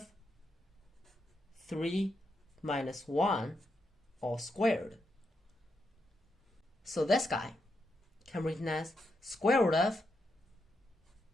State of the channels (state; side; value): normal; both; correlation 0.83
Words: 3 minus 1 all squared. So this guy can be written as square root of